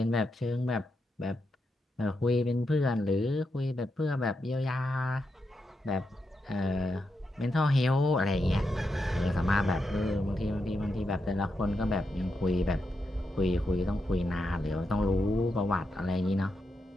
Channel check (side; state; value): both; normal; correlation 0.84